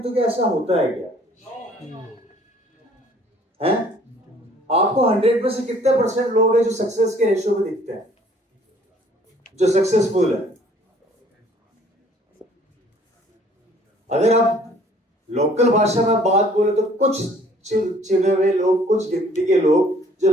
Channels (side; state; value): both; normal; correlation 0.57